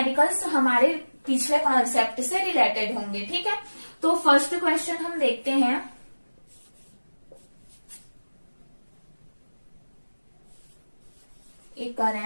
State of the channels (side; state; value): both; inverted; correlation -1.00